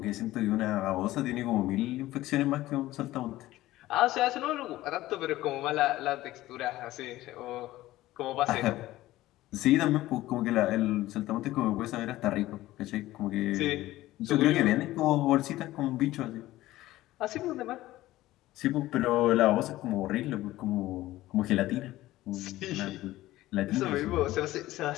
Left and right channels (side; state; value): right; quieter; 16.3 dB